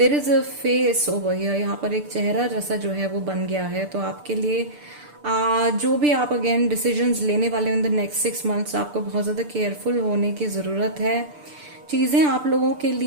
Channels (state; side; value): late; left; 6.8 ms